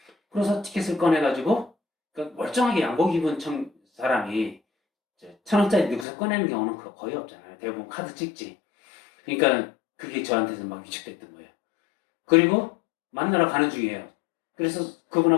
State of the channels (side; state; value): right; drops out; at 6.1 s